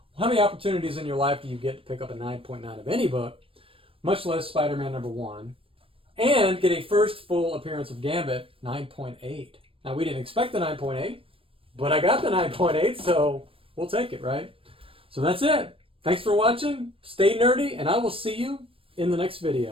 how many opportunities in your life do you get to pick up a 9.9 of any book, much less Spider-Man #1, and get a first full appearance of Gambit, 9.8. Now, we didn't expect the 9.8, but I got the 9.8, so we'll take it, right? So that's it. Thanks for watching. Stay nerdy, and I will see you in the next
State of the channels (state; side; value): late; left; 0.26 ms